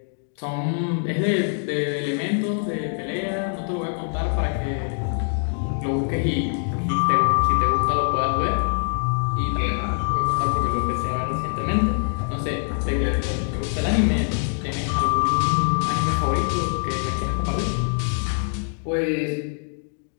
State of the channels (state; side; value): silent; right; 63 dB below the other